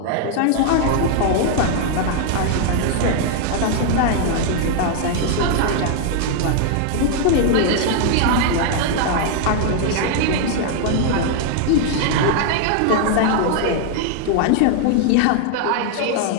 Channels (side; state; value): both; different; correlation 0.00